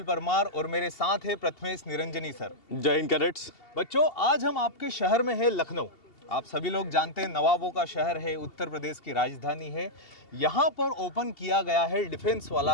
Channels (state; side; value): late; right; 2.7 ms